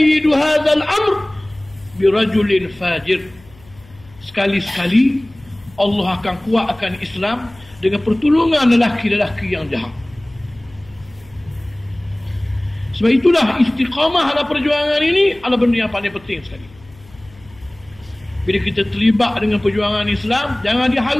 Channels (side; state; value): left; noise; hum, 25 dB below the sound